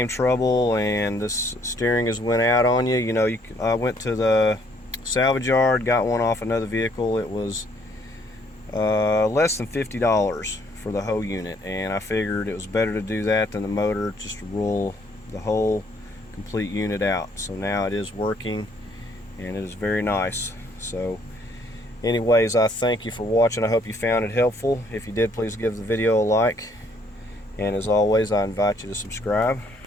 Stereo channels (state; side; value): normal; both; correlation 0.65